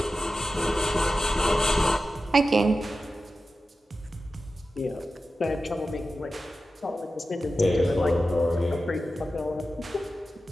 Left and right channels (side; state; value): both; normal; correlation 0.93